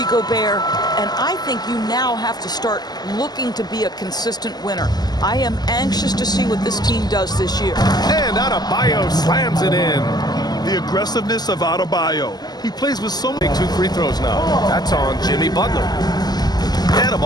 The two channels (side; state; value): right; late; 0.20 ms